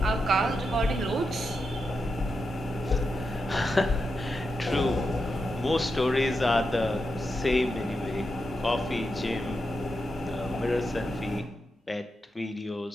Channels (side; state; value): both; normal; correlation 0.87